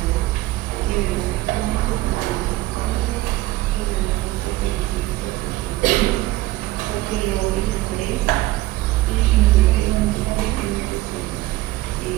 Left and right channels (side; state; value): left; quieter; 17.8 dB